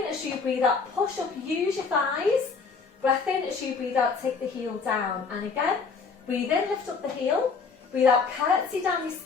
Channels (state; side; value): quieter; right; 5.0 dB